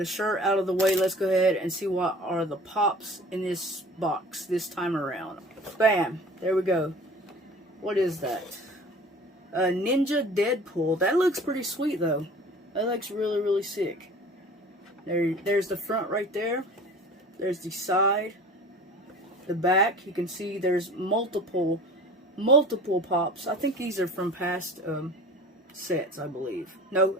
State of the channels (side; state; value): both; normal; correlation 0.42